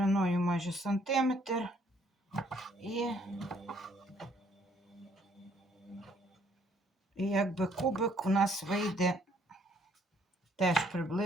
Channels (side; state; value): both; normal; correlation 0.65